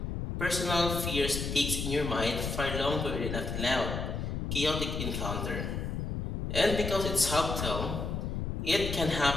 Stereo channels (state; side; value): noise; left; rumble, 3 dB below the sound